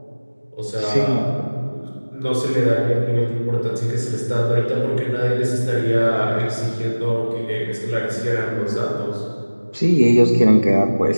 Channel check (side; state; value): both; inverted; correlation -1.00